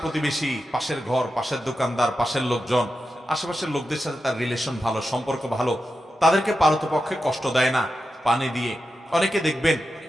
প্রতিবেশী, পাশের ঘর, পাশের দোকানদার, পাশের লোকজন, আশেপাশের লোকদের সাথে তার রিলেশন ভালো, সম্পর্ক ভালো, তাদেরকে পারতপক্ষে কষ্ট দেয় না, পানি দিয়ে। অনেকে দেখবেন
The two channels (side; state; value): both; normal; correlation 0.90